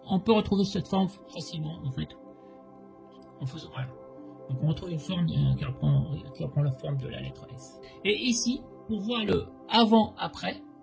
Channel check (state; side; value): identical; both; correlation 1.00